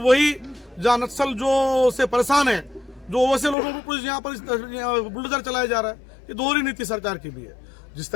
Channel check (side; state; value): right; drops out; at 3.6 s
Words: वही जहाँ नक्सल जो से परेशान है, जो वैसे लोगों को कुछ यहाँ पर बुलडोजर चलाया जा रहा है। ये दोहरी नीति सरकार की भी है। जिस